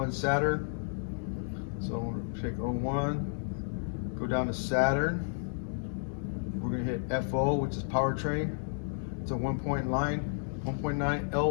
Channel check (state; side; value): silent; right; digital silence